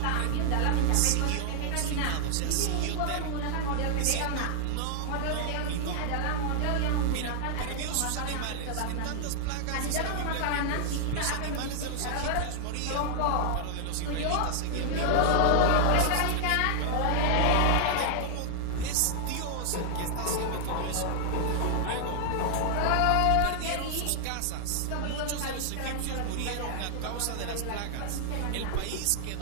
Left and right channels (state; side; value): different; both; correlation 0.00